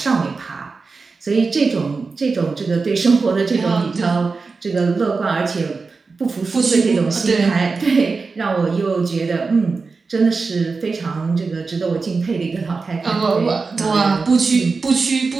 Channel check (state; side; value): quieter; left; 4.4 dB